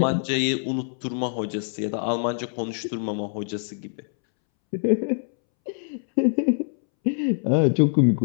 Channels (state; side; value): silent; right; 62 dB below the other